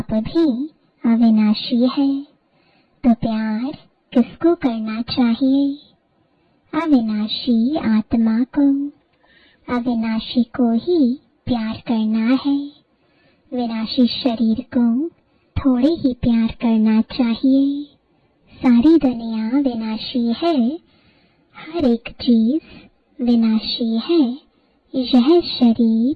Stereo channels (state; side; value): identical; both; correlation 1.00